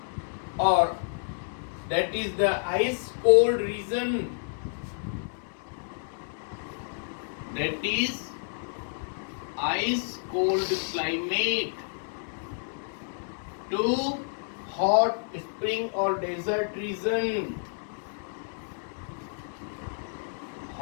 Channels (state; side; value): silent; right; digital silence